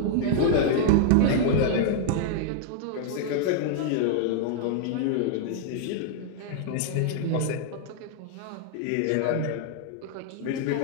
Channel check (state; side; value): different; both; correlation -0.01